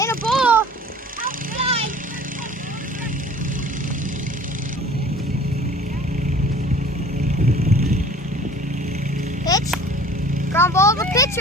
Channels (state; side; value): normal; both; correlation 0.47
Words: a ball. Outside. Pitch. Ground ball to the